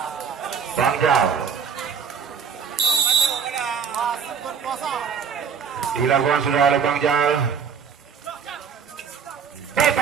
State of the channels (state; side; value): quieter; left; 6.7 dB